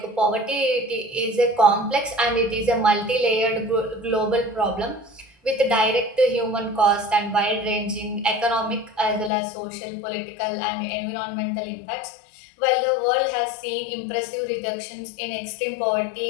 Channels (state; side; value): drops out; right; at 9.3 s